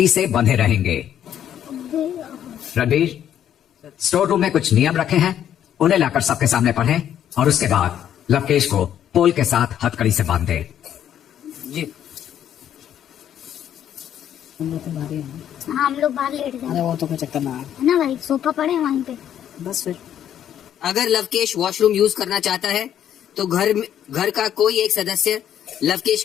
से बंधे रहेंगे। रणबीर, स्टोर रूम में कुछ नियम रखे हैं, उन्हें लाकर सबके सामने पढ़ें और उसके बाद लवकेश को पोल के साथ हथकड़ी से बांध दें। जी हम लोग बाहर लेट जाए। अरे वो तो कोई चक्कर ना है है ना भाई, सोफा पड़े हैं वहीं पे। बस फिर। अगर लवकेश वॉशरूम यूज करना चाहता है तो घर का कोई एक सदस्य लवकेश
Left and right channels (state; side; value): quieter; right; 10.2 dB